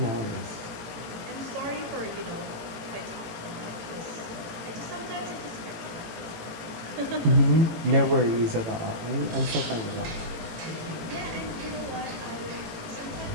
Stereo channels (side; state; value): left; late; 18 ms